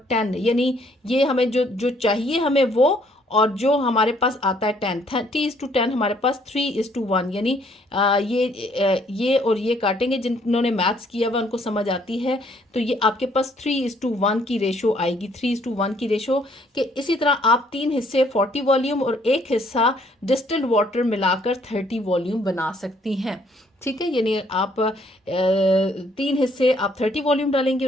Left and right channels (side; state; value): both; normal; correlation 0.65